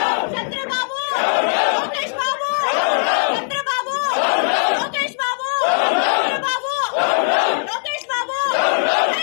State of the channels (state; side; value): silent; right; 66 dB below the other